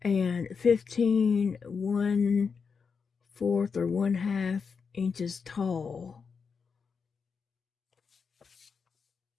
and 15 1/4 or 1/2 inches tall.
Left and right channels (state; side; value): quieter; right; 5.7 dB